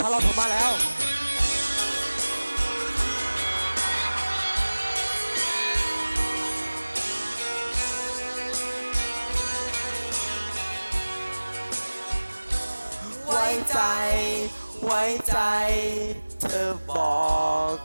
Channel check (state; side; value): inverted; both; correlation -1.00